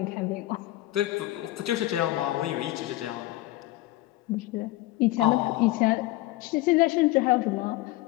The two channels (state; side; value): quieter; right; 17.0 dB